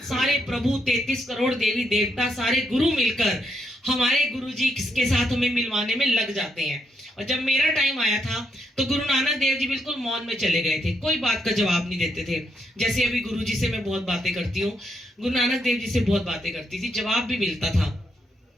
सारे प्रभु, 33 करोड़ देवी देवता, सारे गुरु मिलकर हमारे गुरुजी के साथ हमें मिलवाने में लग जाते हैं। और जब मेरा टाइम आया था तो गुरु नानक देव जी बिल्कुल मौन में चले गए थे, कोई बात का जवाब नहीं देते थे। जैसे अभी गुरु जी से मैं बहुत बातें करती हूँ, गुरु नानक देव जी से बहुत बातें करती थी, जवाब भी मिलता था,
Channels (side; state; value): both; normal; correlation 0.78